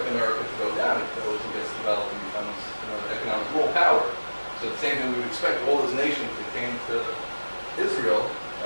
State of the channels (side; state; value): both; inverted; correlation -1.00